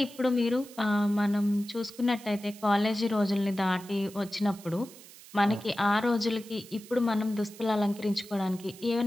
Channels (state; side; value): noise; right; hiss, 19 dB below the sound